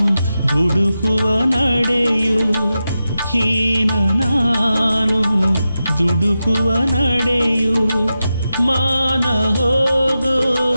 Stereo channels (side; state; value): both; inverted; correlation -0.91